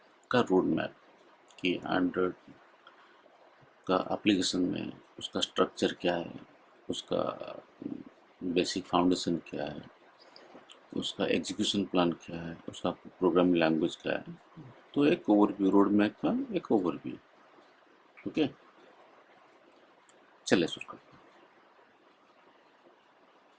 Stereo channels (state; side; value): identical; both; correlation 1.00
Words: का रोड मैप, कि एंड्रॉयड का एप्लीकेशन में उसका स्ट्रक्चर क्या है, उसका बेसिक फाउंडेशन क्या है, उसका एग्जीक्यूशन प्लान क्या है, उसका प्रोग्रामिंग लैंग्वेज क्या है। तो एक ओवरव्यू, रोड मैप का एक ओवरव्यू। ओके, चलिए शुरू करते हैं।